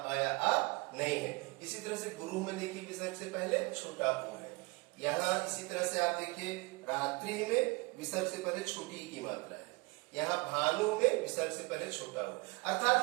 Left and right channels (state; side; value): quieter; left; 26.9 dB